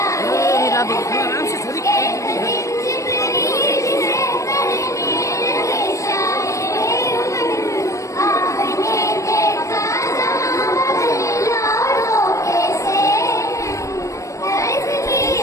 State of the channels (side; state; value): right; late; 0.15 ms